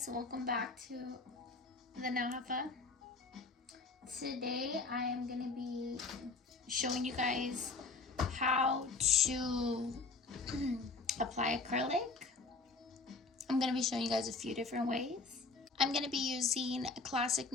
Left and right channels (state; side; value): quieter; right; 3.9 dB